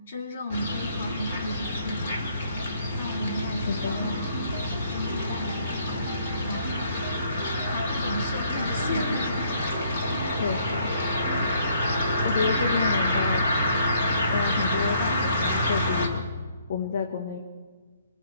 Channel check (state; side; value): inverted; both; correlation -0.66